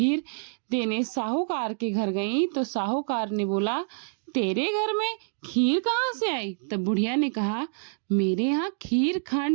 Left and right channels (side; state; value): left; silent; digital silence